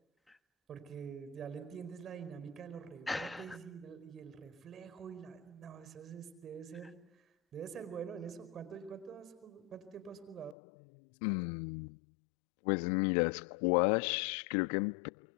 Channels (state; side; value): drops out; right; at 10.6 s